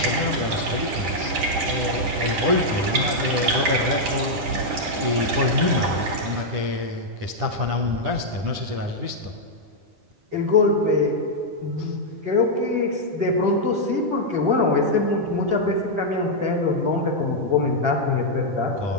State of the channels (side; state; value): left; late; 10 ms